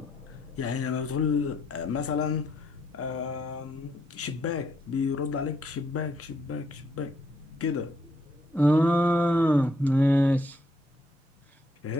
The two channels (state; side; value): normal; both; correlation 0.73